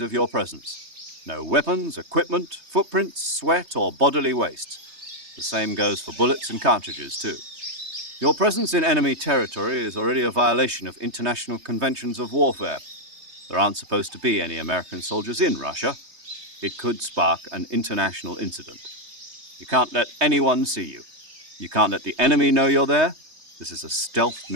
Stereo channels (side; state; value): left; late; 3.2 ms